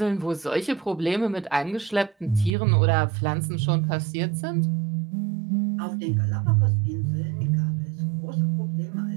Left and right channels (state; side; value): drops out; left; at 2.6 s